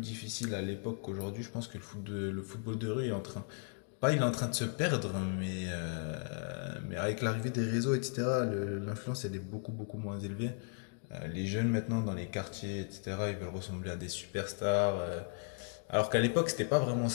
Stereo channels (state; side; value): silent; right; 54 dB below the other